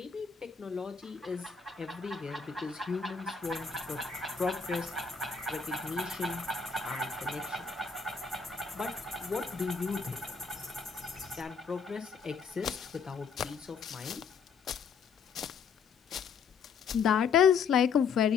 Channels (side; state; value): right; quieter; 5.8 dB